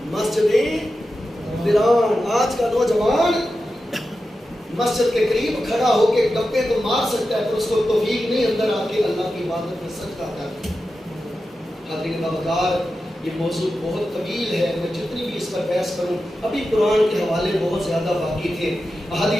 آج کا نوجوان مسجد کے قریب کھڑا ہو کے گپے تو مار سکتا ہے پر اس کو توفیق نہیں اندر آ کے اللہ کی عبادت میں سجدہ کرتا. حاضرین باوقار، یہ موضوع بہت طویل ہے. میں جتنی بھی اس پر بحث کروں، ابھی قرآن کے حوالے بہت زیادہ باقی تھے،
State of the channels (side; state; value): both; normal; correlation 0.91